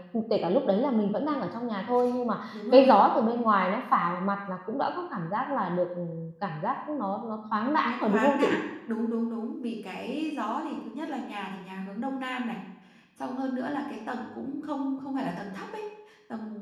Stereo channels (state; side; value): identical; both; correlation 1.00